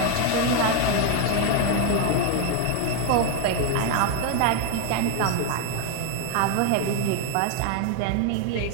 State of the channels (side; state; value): both; different; correlation 0.01